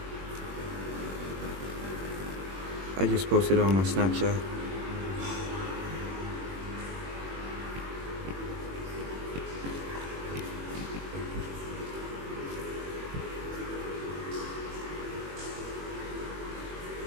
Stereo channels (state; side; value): late; left; 21 ms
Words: I just posted it on my Snapchat.